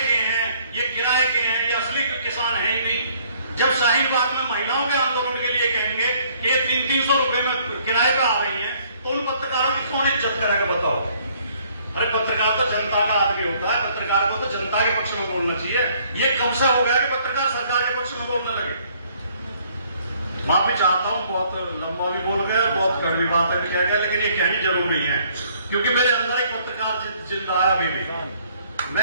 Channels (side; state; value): both; inverted; correlation -0.62